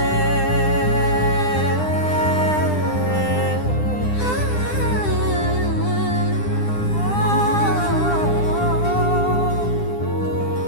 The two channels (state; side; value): late; right; 9.9 ms